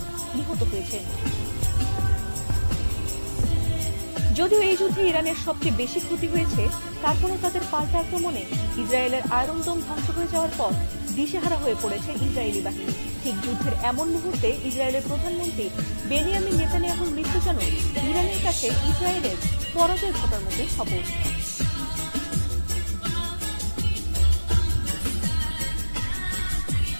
নিহত হয়েছেন। যদিও এই যুদ্ধে ইরানের সবচেয়ে বেশি ক্ষতি হয়েছে, তারপরও তাদের পাল্টা আক্রমণে ইসরায়েলের আয়রন ডোম ধ্বংস হয়ে যাওয়ার পর দিশেহারা হয়ে পড়েছে ইসরায়েলি বাহিনী। ঠিক যুদ্ধের এমন মুহূর্তে ইসরায়েলের প্রধানমন্ত্রী বেনিয়ামিন নেতানিয়াহুর মৃত্যু যেন ইরানের কাছে ইসরায়েলের পরাজয় ঘটার মতোই খবর।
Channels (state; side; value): inverted; both; correlation -1.00